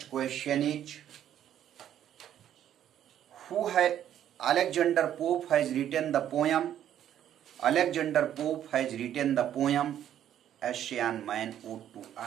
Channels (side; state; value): left; quieter; 10.7 dB